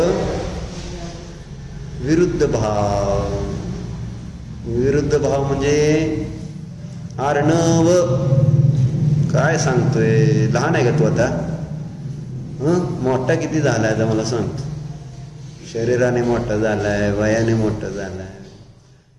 विरुद्ध भाव, विरुद्ध भाव म्हणजे अर्णव काय सांगतोय? लहान आहे का तू आता? मोठा किती झालाय आता मला सांगतो. शरीराने मोठा झालाय, वयाने मोठा झालाय.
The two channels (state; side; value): identical; both; correlation 1.00